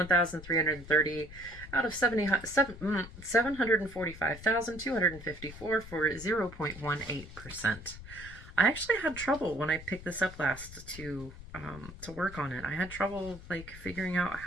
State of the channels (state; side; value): noise; left; rumble, 15 dB below the sound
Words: out of 745,254 for 0.18%. I actually had trouble when I picked this up last to work on it. I had trouble like figuring out